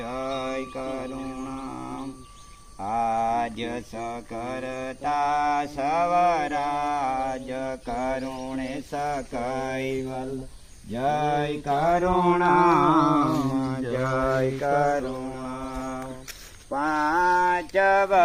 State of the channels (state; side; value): identical; both; correlation 1.00